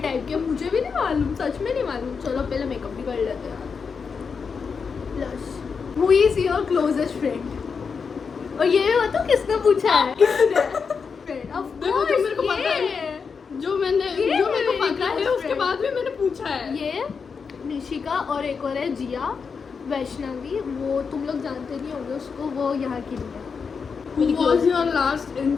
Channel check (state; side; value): quieter; right; 5.6 dB